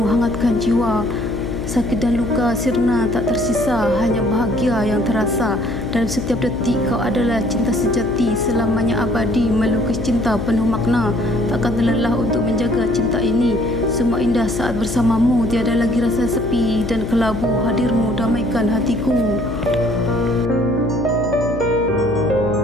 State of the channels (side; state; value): left; noise; hum, 7 dB below the sound